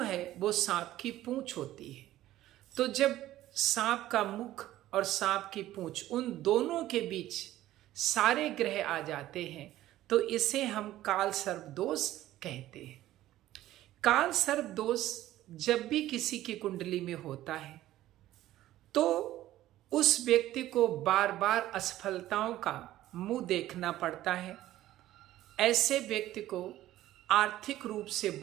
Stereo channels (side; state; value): left; quieter; 14.5 dB